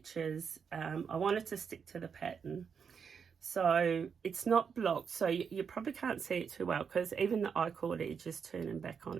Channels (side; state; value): left; quieter; 6.5 dB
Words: I wanted to stick to the pattern. So it's not blocked, so you probably can't see it too well because even the I-cord edge is turning back